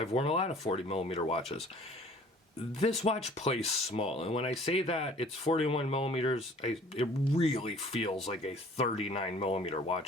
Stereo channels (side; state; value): both; normal; correlation 0.51